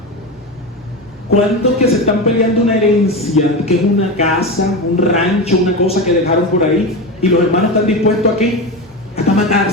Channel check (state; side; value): normal; both; correlation 0.21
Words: ¿Cuántos que se están peleando una herencia, que es una casa, un rancho, una cosa que dejaron por ahí, y los hermanos están dispuestos a qué? Hasta